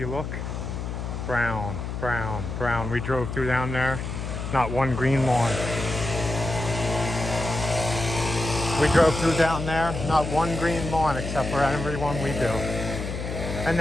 look, brown, brown, brown. We drove through down there, not one green lawn. We drove through down there, not one green lawn except for every one we do. And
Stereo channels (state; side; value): noise; left; hum, 5 dB below the sound